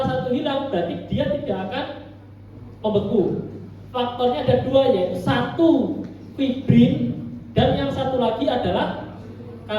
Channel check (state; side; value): identical; both; correlation 1.00